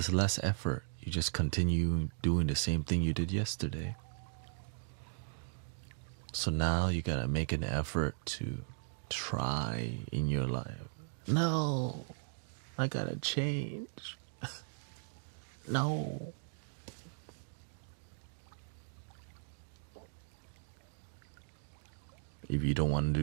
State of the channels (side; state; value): left; silent; digital silence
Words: less effort. You just continue doing the same thing you did yesterday. So now you gotta make an effort to try in your life. No, I gotta change. No. If you don't want